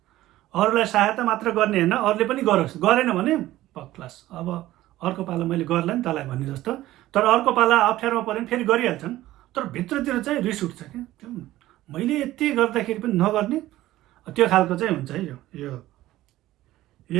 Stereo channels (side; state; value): left; quieter; 15.6 dB